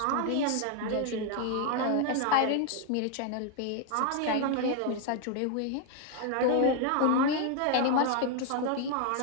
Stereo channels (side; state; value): both; different; correlation 0.00